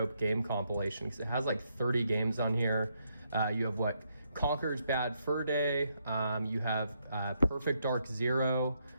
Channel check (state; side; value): inverted; both; correlation -0.77